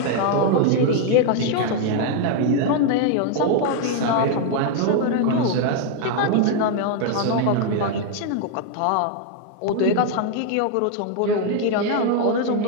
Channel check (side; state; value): both; different; correlation 0.00